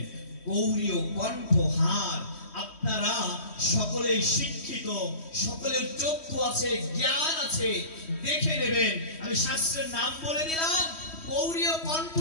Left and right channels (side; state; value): right; late; 3.1 ms